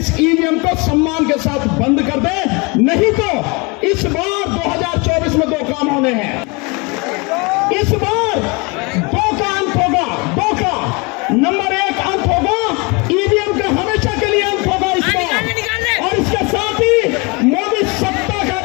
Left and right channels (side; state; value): right; quieter; 28.4 dB